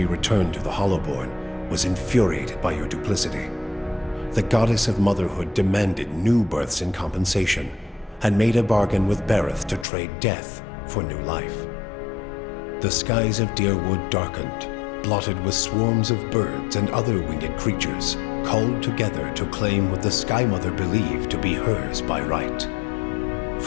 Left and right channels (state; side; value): drops out; right; at 9.9 s